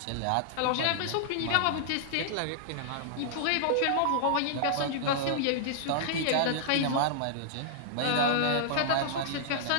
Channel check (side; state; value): both; different; correlation -0.01